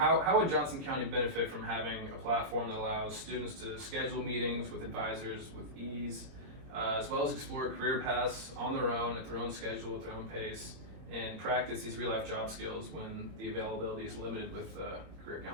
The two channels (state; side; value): late; left; 21 ms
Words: would Johnson County benefit from having a platform that allows students to schedule meetings with advisors with ease, as well as explore career paths on their own, at their own schedule, at their own pace, and practice these real-life job skills when the availability is limited with career